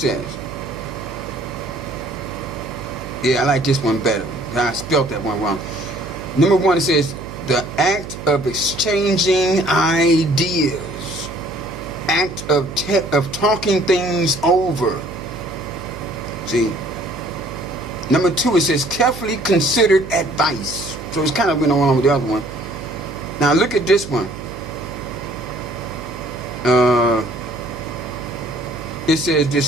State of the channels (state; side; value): noise; right; hum, 11 dB below the sound